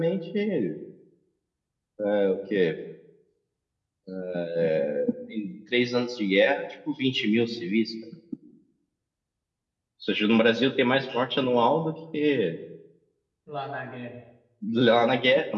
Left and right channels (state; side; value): identical; both; correlation 1.00